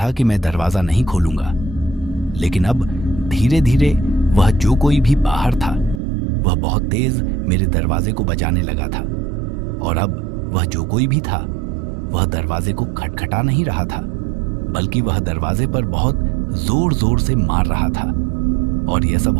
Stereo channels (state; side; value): drops out; left; at 6.0 s